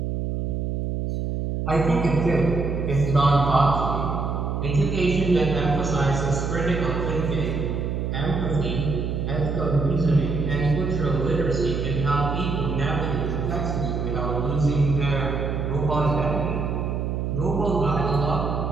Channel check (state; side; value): noise; right; hum, 2 dB below the sound